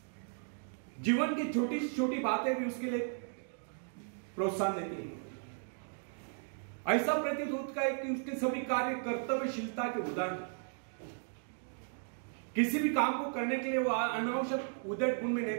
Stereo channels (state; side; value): silent; left; 54 dB below the other